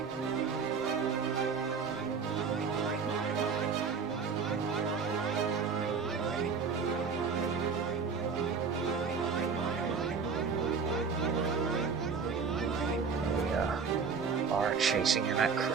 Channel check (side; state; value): left; quieter; 5.5 dB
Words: We are chasing him at